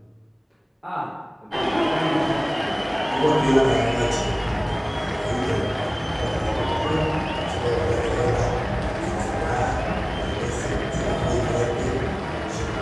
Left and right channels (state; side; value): identical; both; correlation 1.00